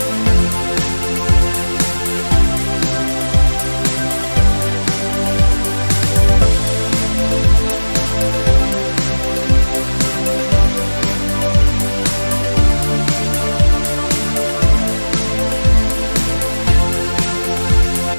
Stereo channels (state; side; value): inverted; both; correlation -1.00